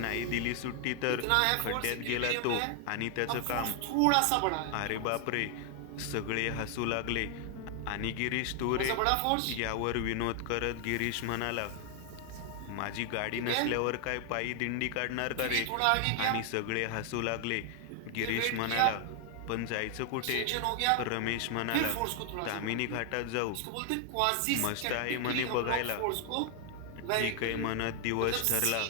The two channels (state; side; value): different; both; correlation 0.00